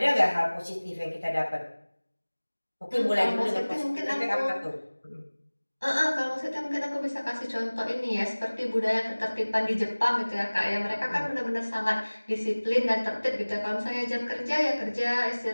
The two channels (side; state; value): both; inverted; correlation -1.00